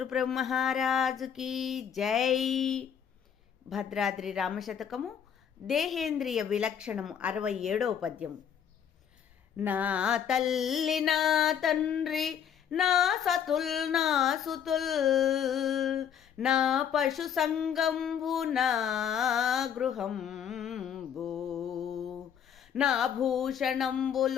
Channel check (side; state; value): right; quieter; 8.4 dB